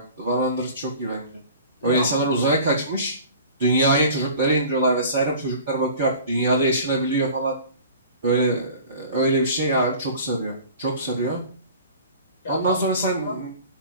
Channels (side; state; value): both; inverted; correlation -0.43